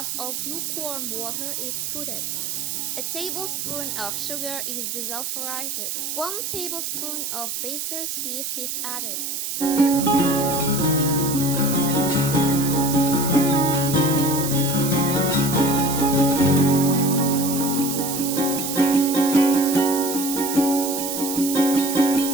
of lukewarm water is put in. A tablespoon of sugar is desulphurized. 1 tablespoon of baker's yeast is added.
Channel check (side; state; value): right; noise; hiss, 4 dB below the sound